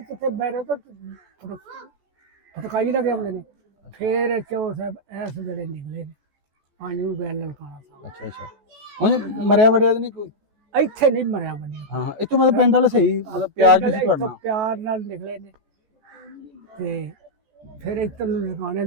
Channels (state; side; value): late; left; 14 ms